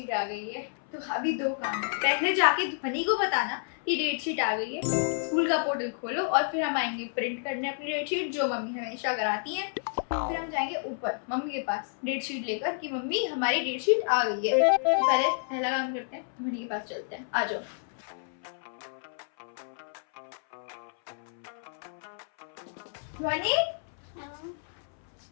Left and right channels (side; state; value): right; silent; 58 dB below the other